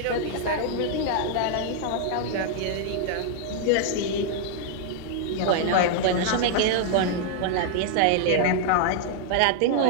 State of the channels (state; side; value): different; both; correlation -0.01